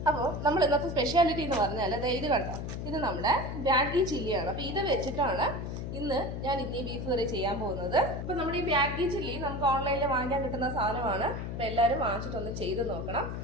അപ്പോൾ നമ്മൾ ഇന്നത്തെ സ്പെഷ്യാലിറ്റി എന്ന് പറഞ്ഞാൽ ഇത് കണ്ടോ, ഇത് നമ്മുടെ ബാഗി ചില്ലിയാണ്. അപ്പോൾ ഇത് വെച്ചിട്ടാണ് ഇന്ന് ഞാൻ ഈ ബീഫ് കറി ചെയ്യാൻ പോകുന്നത്. അപ്പോൾ നമ്മുടെ ഈ ബാഗി ചില്ലി നമുക്ക് ഓൺലൈനിൽ വാങ്ങാൻ കിട്ടുന്ന സാധനമാണ്. അപ്പോൾ എല്ലാവരും വാങ്ങിച്ചിട്ടൊന്ന് ചെയ്ത് നോക്കണം,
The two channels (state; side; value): noise; left; hum, 5 dB below the sound